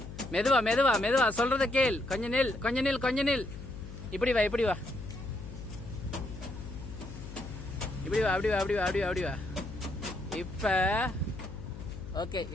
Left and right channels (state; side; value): noise; left; hum, 11 dB below the sound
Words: மெதுவா மெதுவா மெதுவா, சொல்றத கேள். கொஞ்ச நில், கொஞ்ச நில், கொஞ்ச நில். இப்படி வா, இப்படி வா, இப்படி வா, அப்படி வா, அப்படி வா, அப்படி வா, அப்படி வா. இப்ப ஓகே.